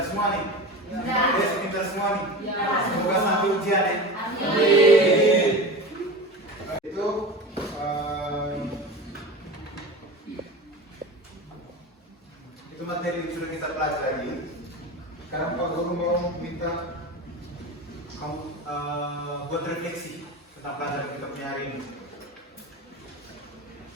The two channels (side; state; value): both; normal; correlation 0.30